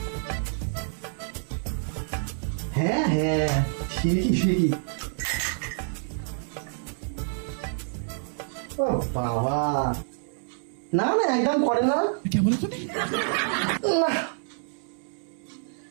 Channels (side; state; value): left; silent; digital silence